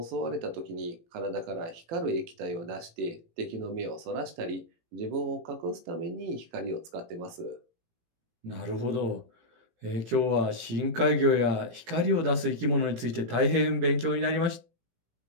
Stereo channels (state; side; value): late; left; 18 ms